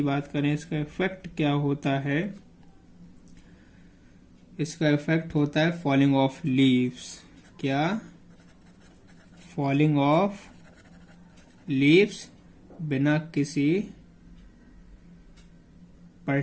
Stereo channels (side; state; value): both; identical; correlation 1.00